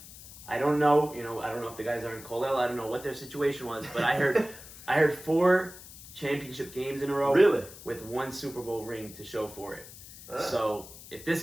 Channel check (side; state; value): left; noise; hiss, 17 dB below the sound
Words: I don't know, I don't know if the guys are in Colell. I don't know what their situation was, but I heard 4 championship games in a row, really, with 1 Super Bowl ring to show for it. So if this